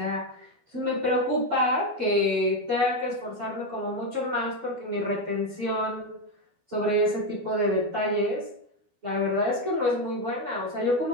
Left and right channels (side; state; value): left; late; 12 ms